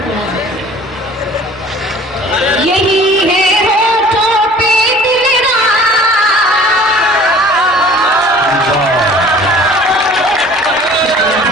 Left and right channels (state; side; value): normal; both; correlation 0.48